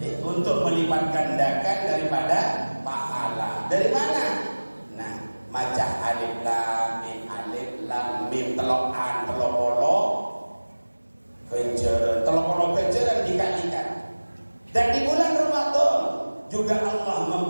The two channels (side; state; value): both; inverted; correlation -1.00